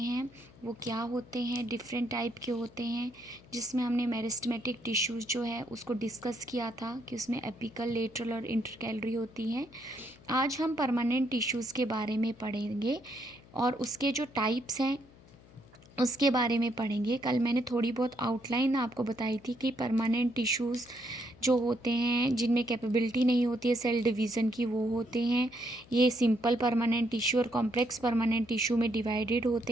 वो क्या होते हैं, डिफरेंट टाइप के होते हैं। जिसमें हमने मेरिस्टेमेटिक टिश्यूज़ जो है उसको डिस्कस किया था कि उसमें एपिकल, लेटरल और इंटरकैलरी होती हैं। आज हम परमानेंट टिश्यूज़ के बारे में पढ़ेंगे और उसके जो टाइप्स हैं उसके बारे में पढ़ेंगे। कल मैंने थोड़ी बहुत आउटलाइन आपको बताई थी कि परमानेंट टिश्यूज़ जो होते हैं जिनमें कैपेबिलिटी नहीं होती है सेल डिवीज़न की, वो होते हैं। ये सिंपल परमानेंट टिश्यू और कॉम्प्लेक्स परमानेंट टिश्यू में डिवाइडेड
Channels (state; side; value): noise; left; hum, 24 dB below the sound